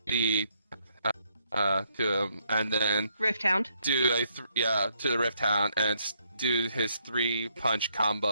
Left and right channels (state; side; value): inverted; both; correlation -0.73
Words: him, and then Rift Hound. do to the Rift Hound and do his 3-punch